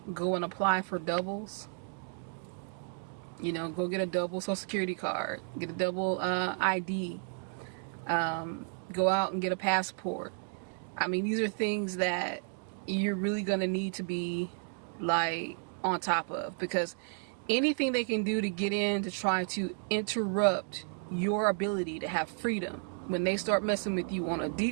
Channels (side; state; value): left; silent; 56 dB below the other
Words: Go and apply for doubles. Go get a double social security card, get a double ID, go out and get a passport. I mean, these are things that you're really going to need to be on top of, because anything they can do to get in to try to interrupt your ability to have freedom, when they start messing with you on a